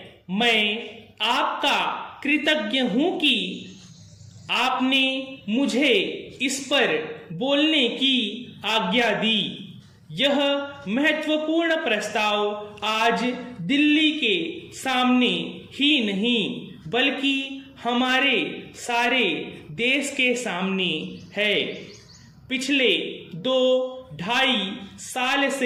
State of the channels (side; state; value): both; identical; correlation 1.00